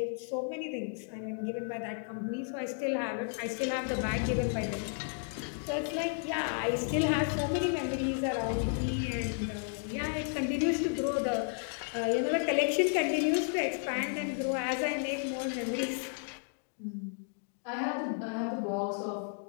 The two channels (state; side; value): silent; right; 56 dB below the other